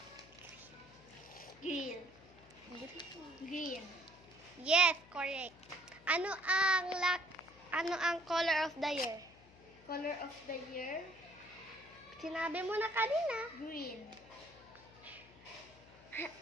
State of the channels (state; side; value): noise; left; hum, 23 dB below the sound